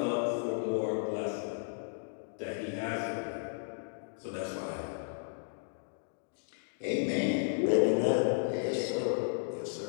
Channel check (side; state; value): right; silent; digital silence